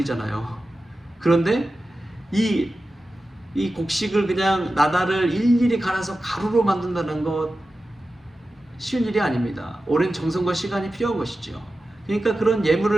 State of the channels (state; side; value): normal; both; correlation 0.93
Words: 그런데 이 곡식을 그냥 나달을 일일이 갈아서 가루로 만든다는 것 쉬운 일이 아닙니다. 오랜 정성과 시간이 필요한 것이죠. 그러니까 그런